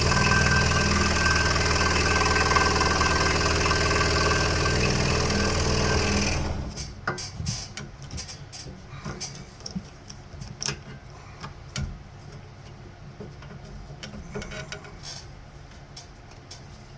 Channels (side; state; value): both; identical; correlation 1.00